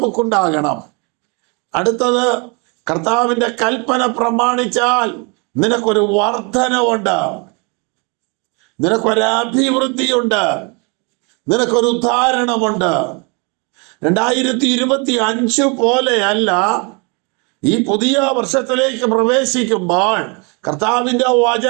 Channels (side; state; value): left; quieter; 32.4 dB